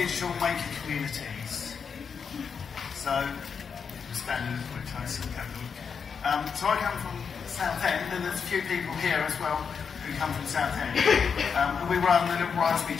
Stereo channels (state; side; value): quieter; right; 6.3 dB